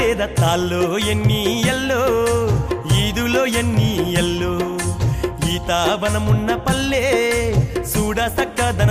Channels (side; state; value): both; identical; correlation 1.00